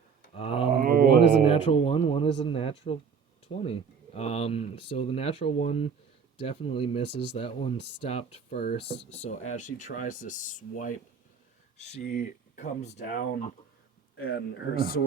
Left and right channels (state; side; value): quieter; left; 6.3 dB